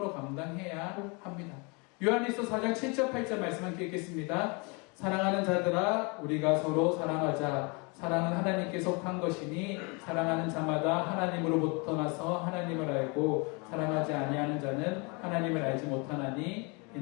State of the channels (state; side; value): quieter; right; 30.9 dB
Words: 감당해야 합니다. 요한일서 4장 7절 8절 말씀 함께 읽겠습니다. 사랑하는 자들아 우리가 서로 사랑하자. 사랑은 하나님께 속한 것이니 사랑하는 자마다 하나님으로부터 나서 하나님을 알고 사랑하지 아니하는 자는 하나님을 알지 못하나니